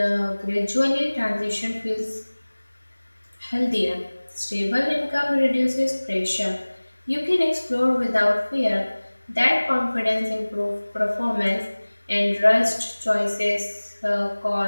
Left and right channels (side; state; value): both; inverted; correlation -1.00